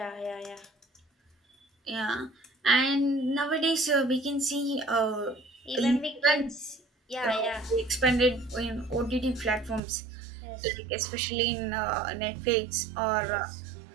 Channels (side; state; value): left; drops out; at 9.8 s